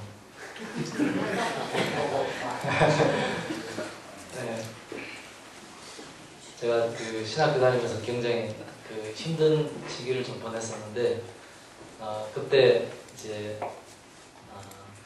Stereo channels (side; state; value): both; identical; correlation 1.00